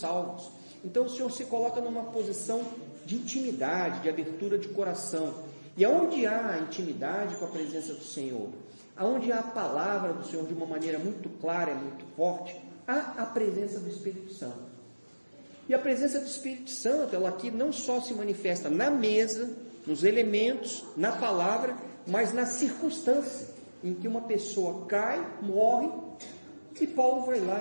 Então o Senhor se coloca numa posição de intimidade, de abertura de coração. E aonde há intimidade com a presença do Senhor, aonde há a palavra do Senhor de uma maneira muito clara, muito forte, há a presença do Espírito Santo. E a presença do Espírito Santo, ela aqui não só se manifesta na mesa, nos elementos, na palavra, mas na circunstância em que uma pessoa cai, morre, e Paulo vai lá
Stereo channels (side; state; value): both; inverted; correlation -1.00